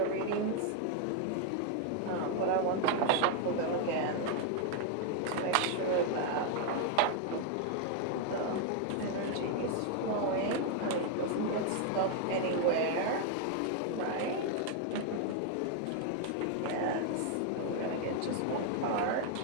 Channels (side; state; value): both; different; correlation 0.00